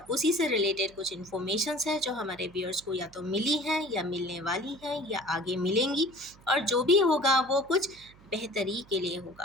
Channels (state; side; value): noise; right; hum, 25 dB below the sound